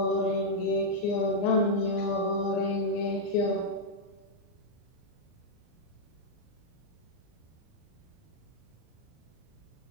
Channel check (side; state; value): right; late; 39 ms